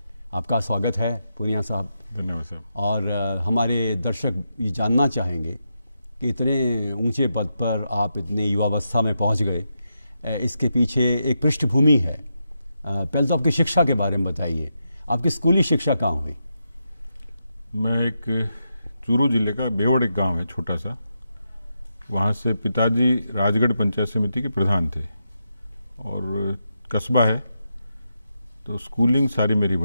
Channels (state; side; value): inverted; both; correlation -0.85